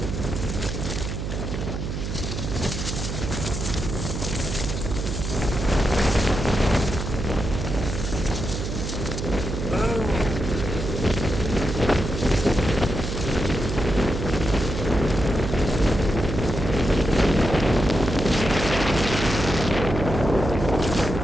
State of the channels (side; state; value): right; noise; hum, 4 dB below the sound